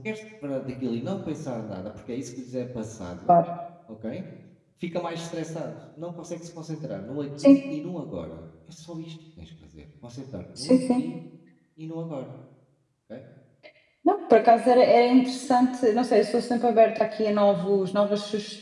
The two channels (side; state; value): both; identical; correlation 1.00